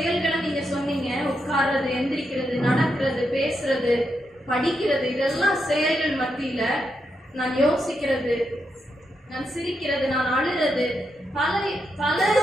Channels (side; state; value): both; normal; correlation 0.83